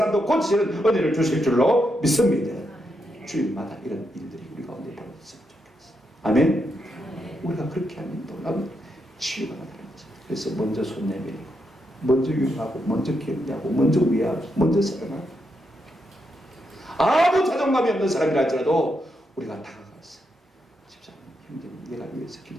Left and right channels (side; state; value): both; normal; correlation 0.82